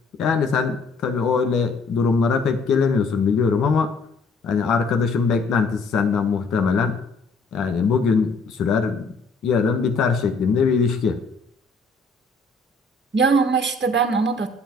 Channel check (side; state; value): right; quieter; 3.4 dB